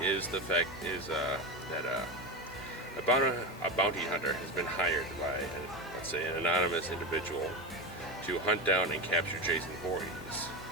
is that a bounty hunter has been hired by, let's say, an anonymous individual to hunt down and capture Jason Voorhees.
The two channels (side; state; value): both; normal; correlation 0.18